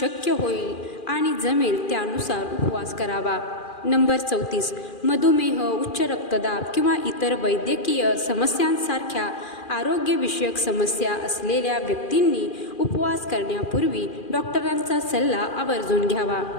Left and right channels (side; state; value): right; late; 2.4 ms